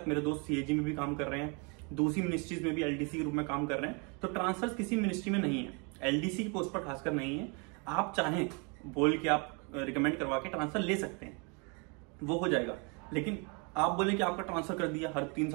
मेरे दोस्त सीएजी में भी काम कर रहे हैं, दूसरी मिनिस्ट्रीज में भी एलडीसी के रूप में काम कर रहे हैं, तो ट्रांसफर किसी मिनिस्ट्री में नहीं है, एलडीसी की पोस्ट पर खासकर नहीं है। आप चाहें बोल के आप रिकमेंड करवा के ट्रांसफर ले सकते हैं, वो हो जाएगा। लेकिन आप बोले कि आपका ट्रांसफर कर दिया, हर 3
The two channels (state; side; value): quieter; left; 33.6 dB